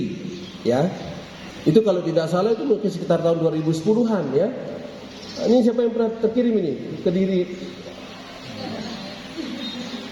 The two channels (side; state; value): both; identical; correlation 1.00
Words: ya. Itu kalau tidak salah itu mungkin sekitar tahun 2010-an, ya. Ini siapa yang pernah terkirim ini? Kediri.